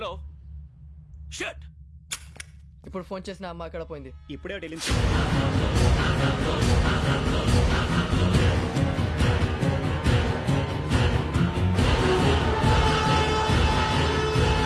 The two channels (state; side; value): identical; both; correlation 1.00